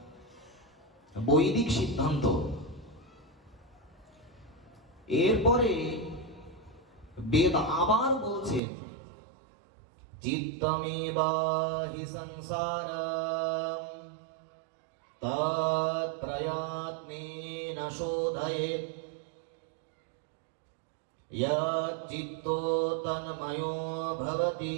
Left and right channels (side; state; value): left; drops out; at 8.6 s